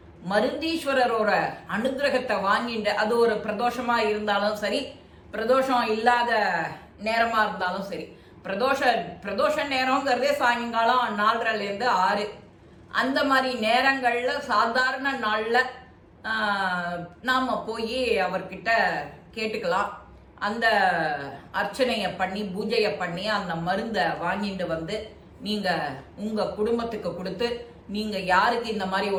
மருந்தீஸ்வரரோட அனுகிரகத்தை வாங்கிட்டு, அது ஒரு பிரதோஷமா இருந்தாலும் சரி, பிரதோஷம் இல்லாத நேரமா இருந்தாலும் சரி, பிரதோஷ நேரங்கிறதே சாயங்காலம் 4:30லேருந்து 6 அந்த மாதிரி நேரங்கள்ல சாதாரண நாள்ல நாம போய் அவர்கிட்ட கேட்டுக்கலாம். அந்த அர்ச்சனையை பண்ணி பூஜையை பண்ணி அந்த மருந்தை வாங்கிட்டு வந்து நீங்க உங்க குடும்பத்துக்கு கொடுத்து, நீங்க யாருக்கு இந்த மாதிரி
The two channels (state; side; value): identical; both; correlation 1.00